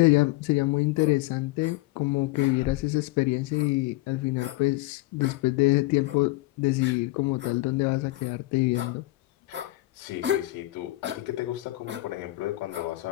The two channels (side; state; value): right; quieter; 19.6 dB